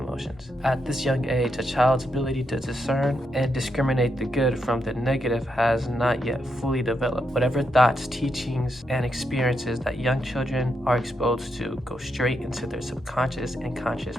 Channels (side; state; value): both; normal; correlation 0.82